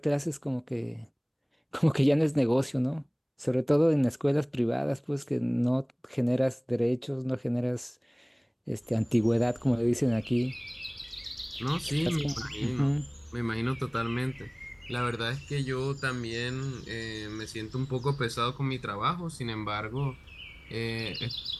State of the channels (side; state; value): both; identical; correlation 1.00